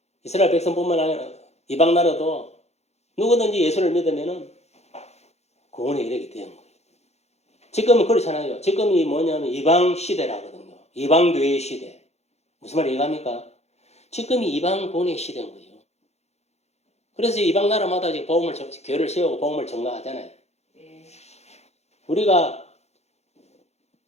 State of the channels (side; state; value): right; late; 0.31 ms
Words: 이스라엘 백성뿐만 아니라 이방 나라도 누구든지 예수를 믿으면은 구원의 이르게 되는 거예요. 지금은 그렇잖아요. 지금이 뭐냐면 이방 시대라거든요. 이방 교회 시대. 무슨 말 이해갑니까? 지금이 이방 구원의 시대인 거예요. 그래서 이방 나라마다 이제 교회를 세우고 복음을 전가하잖아요. 예. 우리가